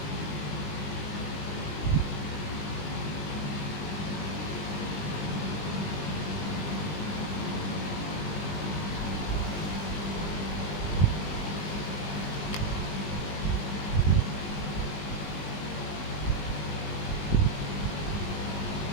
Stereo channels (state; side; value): late; right; 20 ms